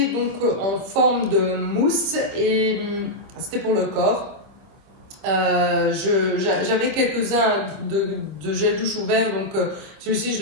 donc en forme de mousse et c'était pour le corps. J'avais quelques-uns de gel douche ouvert, donc celui-ci je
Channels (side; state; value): left; late; 25 ms